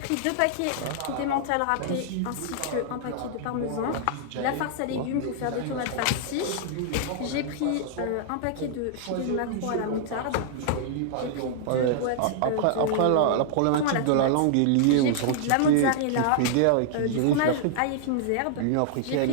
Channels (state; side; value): different; both; correlation -0.01